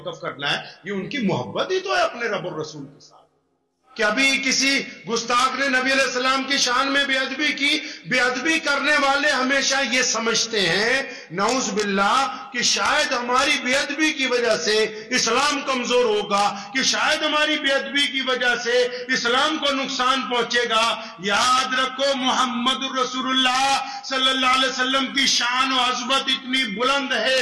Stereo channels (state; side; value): identical; both; correlation 1.00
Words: करना है। ये उनकी मोहब्बत ही तो है अपने रब और रसूल के साथ। कि अभी किसी गुस्ताख ने नबी अलैहि सलाम की शान में बेअदबी की। बेअदबी करने वाले हमेशा ये समझते हैं नऊज बिल्लाह कि शायद हमारी बेअदबी की वजह से इस्लाम कमजोर होगा, कि शायद हमारी बेअदबी की वजह से इस्लाम को नुकसान पहुंचेगा। याद रखो मोहम्मद रसूलुल्लाह सल्लल्लाहु अलैहि वसल्लम की शान और अज़मत इतनी बुलंद है,